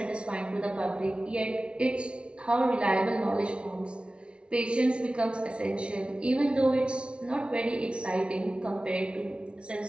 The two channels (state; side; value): late; left; 0.059 ms